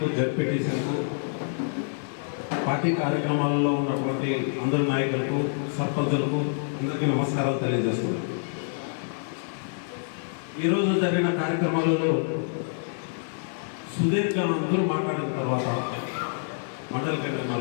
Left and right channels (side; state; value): right; silent; digital silence